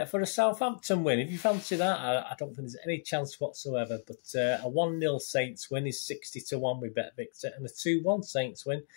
for a Southampton win, if you fancy that, I don't think there's any chance whatsoever. But a 1-0 Saints win is 60-1 with Bet Victor, and a 2-1 Saints win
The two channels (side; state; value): right; silent; digital silence